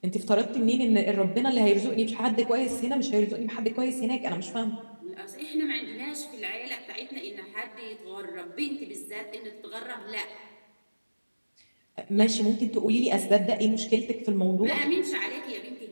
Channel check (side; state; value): both; inverted; correlation -1.00